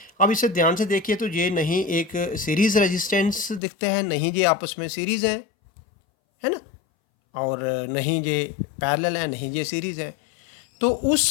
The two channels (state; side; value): drops out; right; at 3.6 s